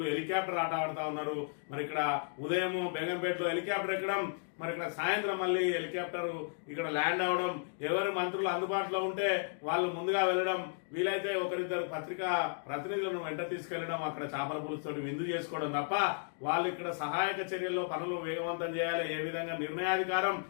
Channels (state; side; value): silent; right; digital silence